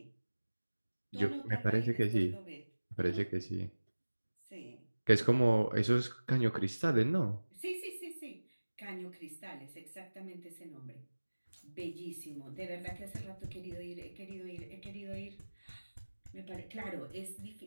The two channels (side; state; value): both; inverted; correlation -1.00